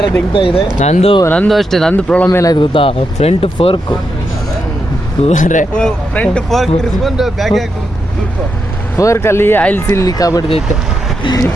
ದಿಗ್ತಾ ಇದೆ. ನಂದು ಅಷ್ಟೇ. ನಂದು ಪ್ರಾಬ್ಲಮ್ ಏನಾಯ್ತು ಗೊತ್ತಾ? ಫ್ರಂಟ್ ಫೋರ್ಕು ಫ್ರಂಟ್ ಫೋರ್ಕ್ ತಿರ್ಸ್ಕೊಂಡು ಬ್ಯಾಗ್ ಫೋರ್ಕಲ್ಲಿ ಆಯಿಲ್ ಸೀಲ್ ಲೀಕ್ ಆಗ್ಬಿಡ್ತೈತೆ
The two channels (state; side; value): normal; both; correlation 0.84